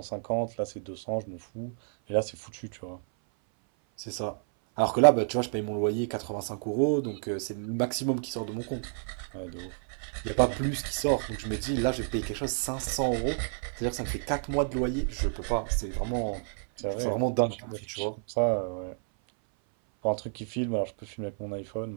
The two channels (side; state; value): left; silent; 56 dB below the other